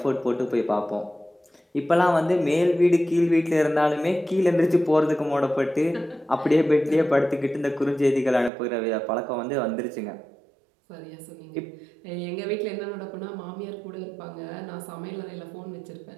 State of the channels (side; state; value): left; drops out; at 8.5 s